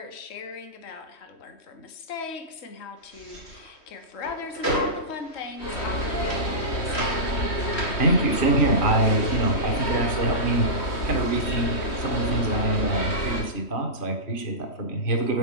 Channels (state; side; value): late; right; 3.1 ms